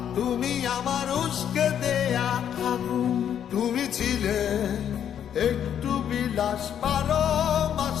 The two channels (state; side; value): quieter; right; 9.3 dB